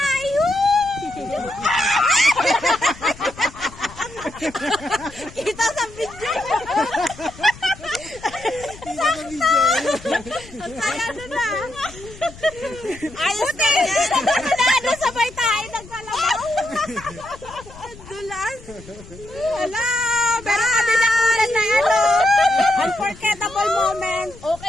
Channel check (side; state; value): left; noise; rumble, 19 dB below the sound